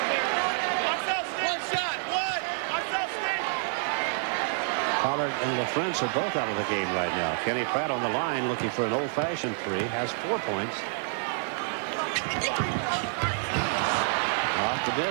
Pollard and LaFrance are both out of the game right now. Kenny Pratt on the line looking for an old-fashioned three. Has 4 points. Off the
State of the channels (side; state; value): left; silent; digital silence